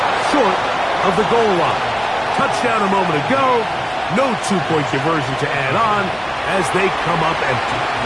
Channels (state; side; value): identical; both; correlation 1.00